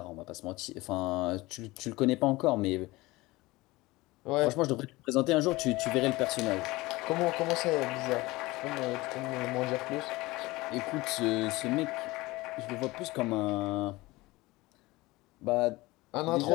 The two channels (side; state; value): right; quieter; 20.8 dB